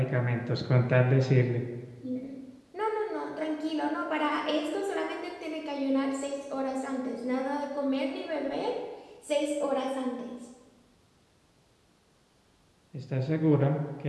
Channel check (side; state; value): both; identical; correlation 1.00